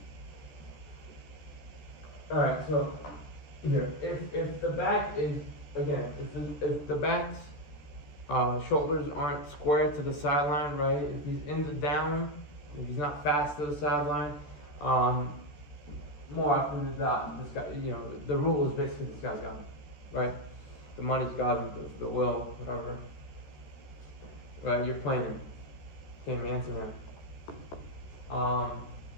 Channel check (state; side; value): late; right; 14 ms